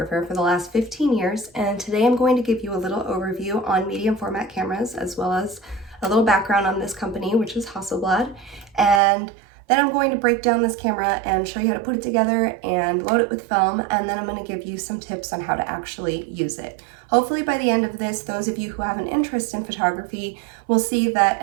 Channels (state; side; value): drops out; left; at 9.0 s